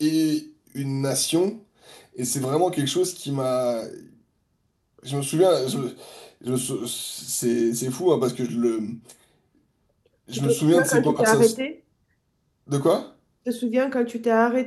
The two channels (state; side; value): identical; both; correlation 1.00